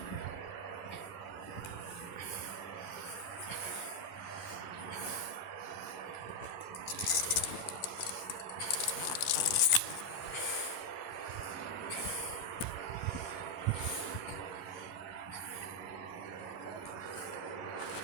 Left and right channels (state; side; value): late; right; 11 ms